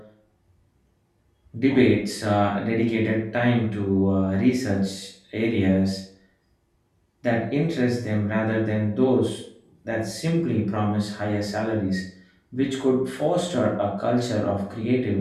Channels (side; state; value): both; identical; correlation 1.00